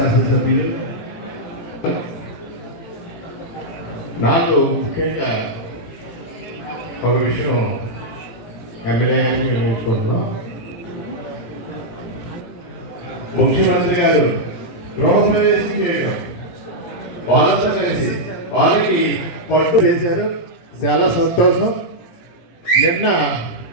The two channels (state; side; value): late; right; 17 ms